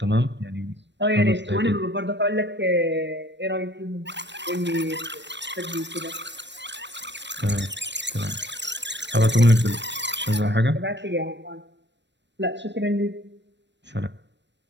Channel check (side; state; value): left; late; 0.52 ms